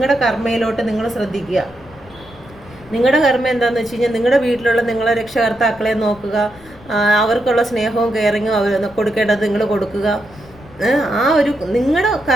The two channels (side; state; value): left; noise; rumble, 22 dB below the sound